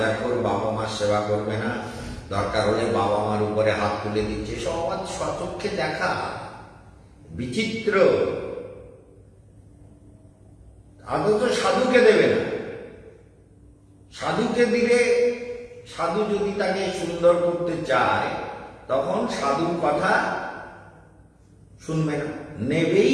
বাবা মার সেবা করবে না, দরকার হলে বাবা মার উপরে হাত তুলে দিচ্ছে, সমাজ সচক্ষে দেখা, বিচিত্র। আদৌ সাধুকে দেবে না, সাধুকে দিলে সাধু যদি তাকে সুন্দর করতে চায় তখন সাধুর কথা শুনবে না, নেবেই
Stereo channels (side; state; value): both; identical; correlation 1.00